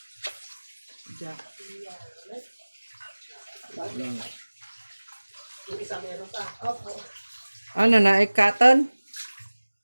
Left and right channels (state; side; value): inverted; both; correlation -1.00